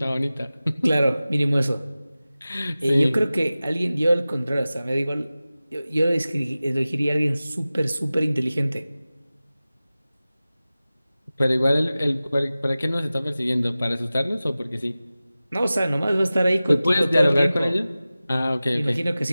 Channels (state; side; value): inverted; both; correlation -0.97